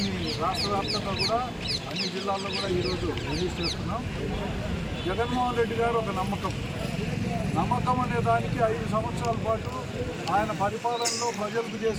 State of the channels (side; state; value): both; identical; correlation 1.00